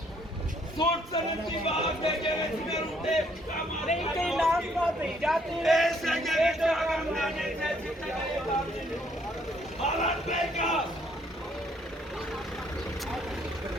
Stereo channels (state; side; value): normal; both; correlation 0.66